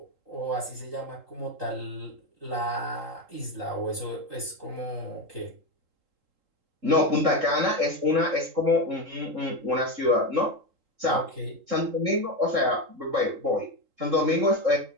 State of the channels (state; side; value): late; left; 3.8 ms